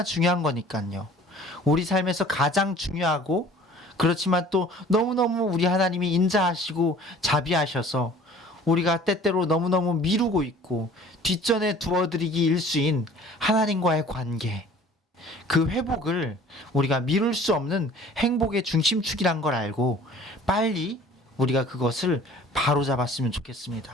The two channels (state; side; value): normal; both; correlation 0.49